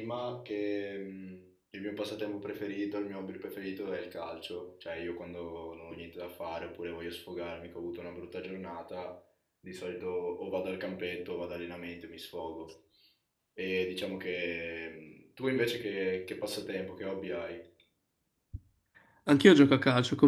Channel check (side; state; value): both; identical; correlation 1.00